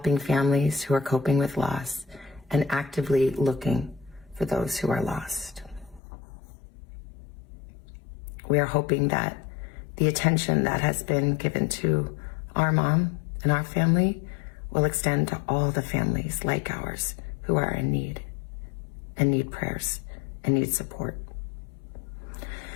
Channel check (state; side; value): drops out; right; at 6.0 s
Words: families who are coping with loss and actively looking for those who are lost. We are hoping that the attention that has been given to our mom and our family will extend to all the families like ours who are in need and need prayers and need support.